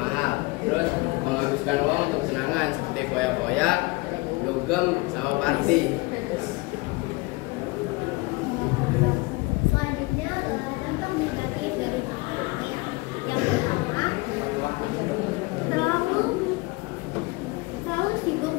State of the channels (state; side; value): quieter; right; 24.7 dB